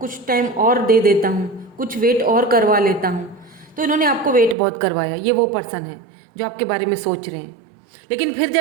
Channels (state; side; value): drops out; left; at 4.5 s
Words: कुछ टाइम और दे देता हूँ, कुछ वेट और करवा लेता हूँ। तो इन्होंने आपको वेट बहुत करवाया, ये वो पर्सन है जो आपके बारे में सोच रहे हैं। लेकिन फिर